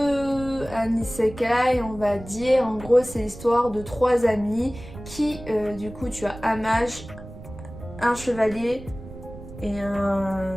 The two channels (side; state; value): right; noise; rumble, 15 dB below the sound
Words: un isekai, on va dire. En gros, c'est l'histoire de 3 amis qui, du coup, tu as un mage, un chevalier et